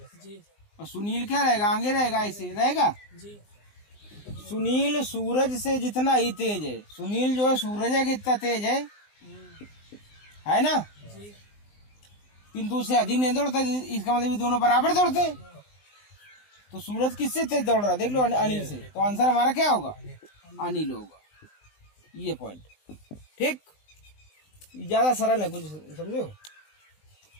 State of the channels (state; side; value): late; right; 19 ms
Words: जी और सुनील क्या रहेगा? आगे रहेगा, ऐसे रहेगा। जी सुनील सूरज से जितना ही तेज है, सुनील जो है सूरज है कितना तेज है ना, जी किंतु उससे अधिक नहीं दौड़ता। इसका मतलब ये दोनों बराबर दौड़ते। तो सूरज किससे तेज दौड़ रहा है? देख लो, अनिल से। तो आंसर हमारा क्या होगा? अनिल होगा। ये पॉइंट ठीक, ज्यादा सरल है, कुछ समझो।